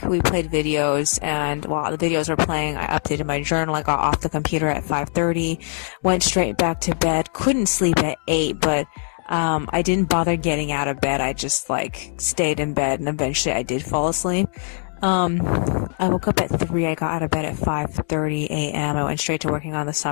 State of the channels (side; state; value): right; silent; digital silence